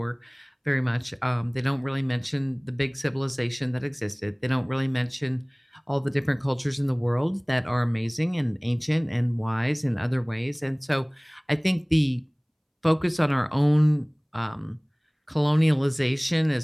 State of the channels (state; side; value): identical; both; correlation 1.00